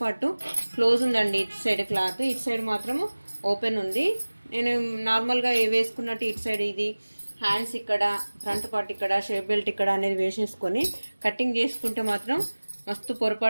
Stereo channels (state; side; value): inverted; both; correlation -1.00